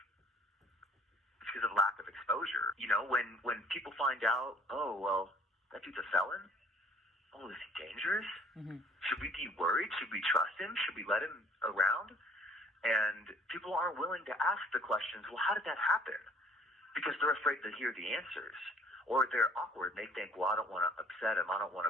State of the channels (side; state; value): both; normal; correlation 0.55